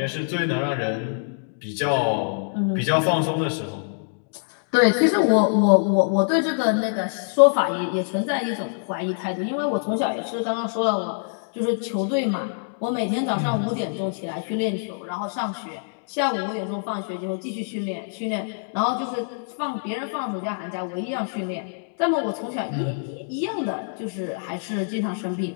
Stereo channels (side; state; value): right; silent; digital silence